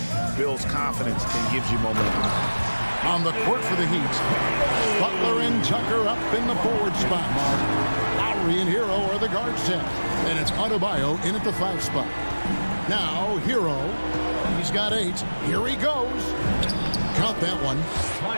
builds confidence and gives you momentum. On the court for the Heat, Butler and Tucker up in the forward spot. Lowry and Hero are the guard set, and it's Adebayo in at the 5 spot. Now Hero, he's got 8. Here he goes. Count that one.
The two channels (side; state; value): both; inverted; correlation -1.00